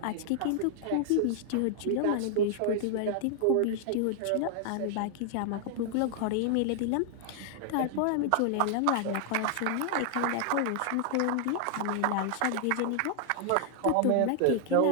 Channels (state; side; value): different; both; correlation 0.00